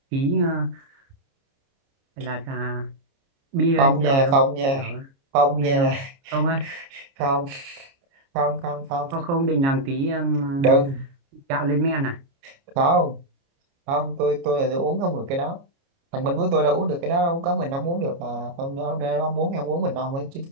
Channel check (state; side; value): late; left; 29 ms